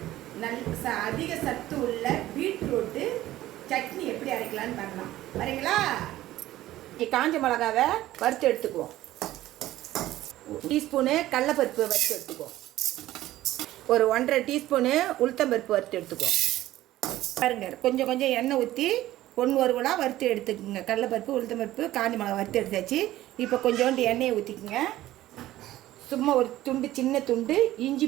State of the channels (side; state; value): left; quieter; 15.1 dB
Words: அதிக சத்து உள்ள பீட்ரூட்டு சட்னி எப்படி அரைக்கலான்னு பார்க்கலாம். வரீங்களா? காஞ்ச மிளகாவை வறுத்து எடுத்துக்குவோம். டீஸ்பூனு கடலைப்பருப்பு வறுத்து எடுத்துக்குவோம். ஒரு 1.5 டீஸ்பூனு உளுத்தம்பருப்பு வறுத்து எடுத்துக்குவோம். பாருங்க, கொஞ்சம் கொஞ்சம் எண்ணெய் ஊற்றி ஒன்று ஒருவலாக வறுத்து எடுத்துக்கோங்க. கடலைப்பருப்பு உளுத்தம்பருப்பு காஞ்ச மிளகா வறுத்து எடுத்தாச்சு. இப்போ கொஞ்சோண்டு எண்ணெயை ஊற்றிக்குங்க. சும்மா ஒரு துண்டு, சின்ன துண்டு இஞ்சி